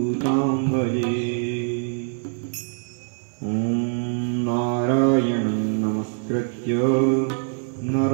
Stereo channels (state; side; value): silent; left; 63 dB below the other